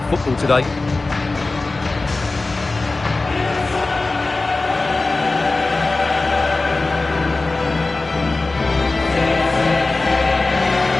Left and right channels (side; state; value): right; quieter; 3.4 dB